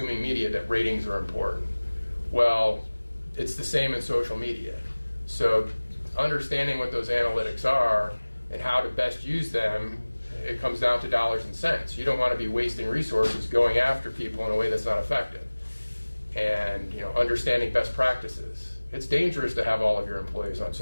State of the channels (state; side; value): inverted; both; correlation -1.00